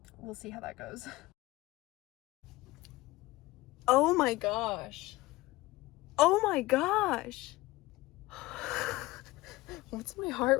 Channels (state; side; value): quieter; right; 19.3 dB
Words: We'll see how that goes. Oh my gosh. Oh my gosh. What's my heart